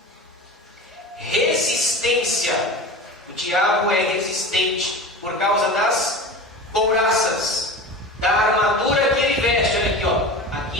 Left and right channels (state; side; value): normal; both; correlation 0.32